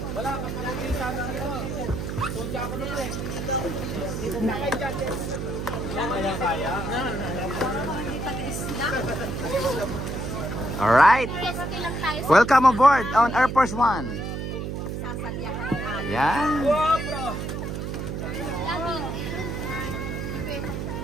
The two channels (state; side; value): noise; right; hum, 4 dB below the sound